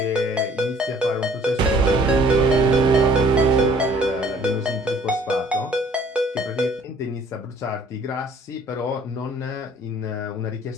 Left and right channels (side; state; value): both; normal; correlation 0.57